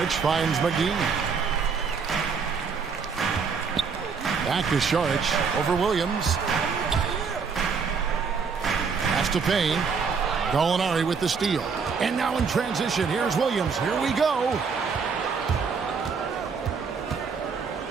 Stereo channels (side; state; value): left; quieter; 5.6 dB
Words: finds McGee. Back to Sharch over Williams. Pass to Payne. Gallinari with the steal. And now in transition, here's Williams. Here we go.